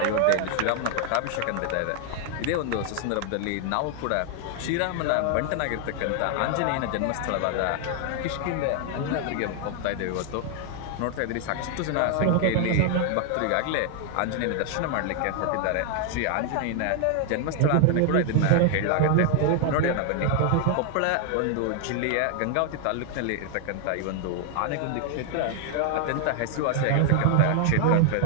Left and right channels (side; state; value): both; different; correlation 0.00